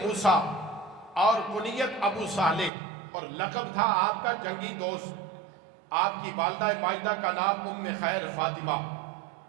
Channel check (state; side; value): drops out; left; at 2.7 s